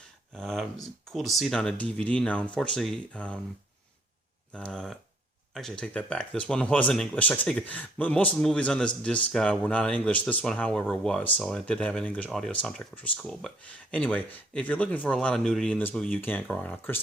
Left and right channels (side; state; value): both; normal; correlation 0.64